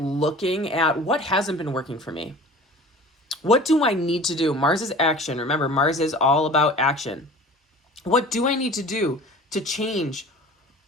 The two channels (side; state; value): both; normal; correlation 0.42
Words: at what hasn't been working for me. What do I need to do? Mars is action. Remember, Mars is all about action. What do I need to do to change